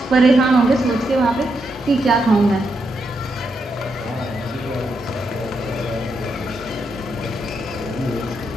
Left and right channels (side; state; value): both; normal; correlation 0.82